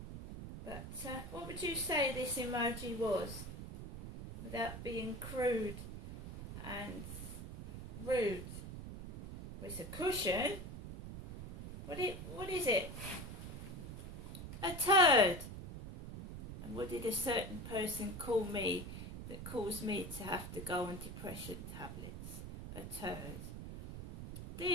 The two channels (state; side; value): noise; right; rumble, 9 dB below the sound